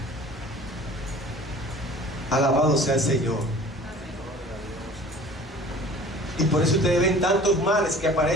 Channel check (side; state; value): both; normal; correlation 0.46